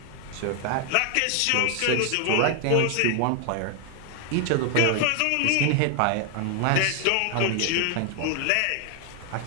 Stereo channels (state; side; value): different; both; correlation 0.00